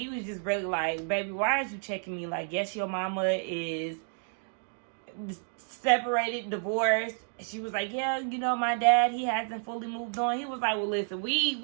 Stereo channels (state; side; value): silent; left; 58 dB below the other